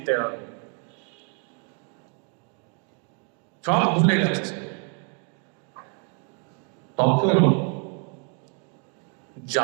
হবে। সব ভুলে গেছে। তখন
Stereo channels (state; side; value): quieter; left; 39.1 dB